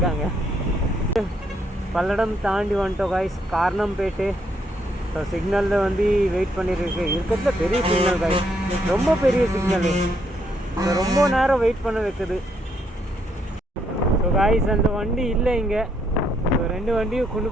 பல்லடம் தாண்டி வந்துட்டோம் காய்ஸ், காரணம்பேட்டு. ஸோ சிக்னலில் வந்து வெயிட் பண்ணியிருக்கு. இருக்கிறதுல பெரிய சிக்னல் காய்ஸ், ரொம்ப பெரிய சிக்னலு, ரொம்ப நேரம் வெயிட் பண்ண வைக்குது. ஸோ காய்ஸ் அந்த வண்டி இல்லை இங்கே. ஸோ 2 வண்டியும் கொண்டு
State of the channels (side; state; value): both; normal; correlation 0.74